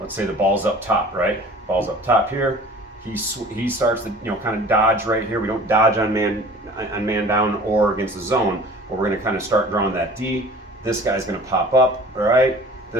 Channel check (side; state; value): both; normal; correlation 0.45